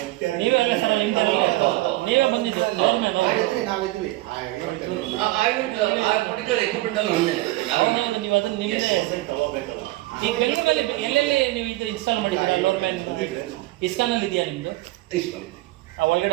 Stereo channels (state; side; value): quieter; left; 18.6 dB